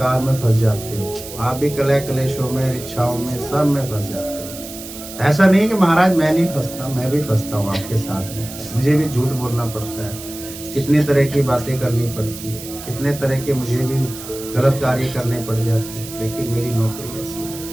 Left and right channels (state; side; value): noise; right; hiss, 13 dB below the sound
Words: में फंस जाते हो, आप भी कलह कलेशों में, इच्छाओं में, सब में फंस जाते हो। ऐसा नहीं कि महाराज मैं नहीं फंसता, मैं भी फंसता हूँ आपके साथ में, मुझे भी झूठ बोलना पड़ता है, कितनी तरह की बातें करनी पड़ती है, कितने तरह के मुझे भी गलत कार्य करने पड़ जाते हैं, लेकिन मेरी नौकरी ऐसी है।